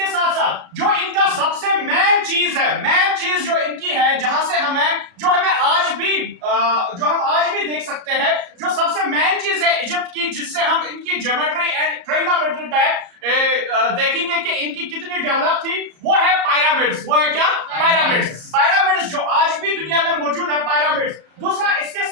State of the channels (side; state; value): left; late; 34 ms